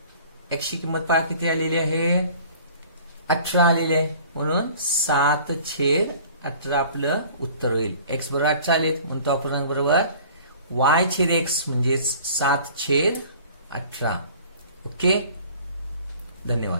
x ची किंमत पहा किती आलेली आहे 18 आलेली आहे, म्हणून 7/18 आपलं उत्तर होईल. x बरोबर 18 आले, म्हणून तो अपूर्णांक बरोबर y/x म्हणजे 7/18. ओके,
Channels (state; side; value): inverted; both; correlation -0.48